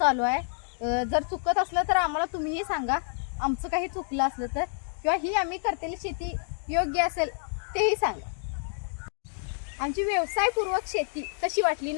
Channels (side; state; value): right; silent; digital silence